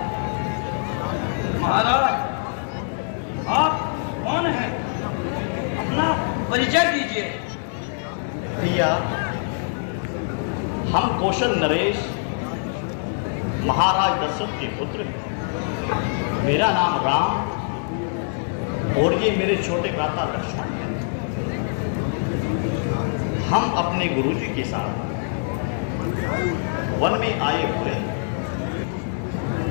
महाराज, आप कौन हैं? अपना परिचय दीजिए। भैया, हम कौशल नरेश महाराज दशरथ के पुत्र हैं। मेरा नाम राम और ये मेरे छोटे भ्राता लक्ष्मण हैं। हम अपने गुरुजी के साथ वन में आए हुए हैं।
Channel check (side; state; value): right; silent; digital silence